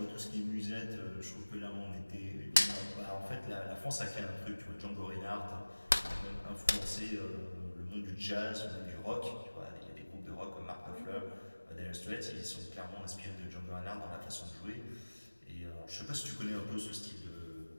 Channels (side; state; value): both; inverted; correlation -1.00